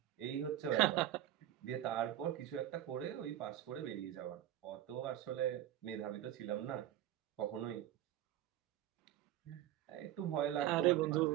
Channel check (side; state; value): left; quieter; 12.8 dB